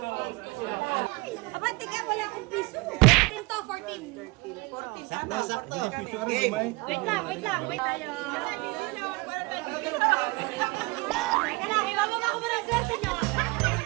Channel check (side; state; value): left; quieter; 25.1 dB